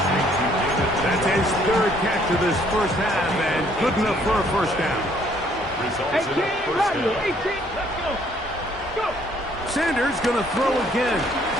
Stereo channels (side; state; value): both; normal; correlation 0.64